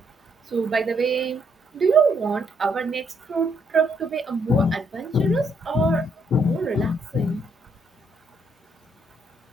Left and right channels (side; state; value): both; normal; correlation 0.73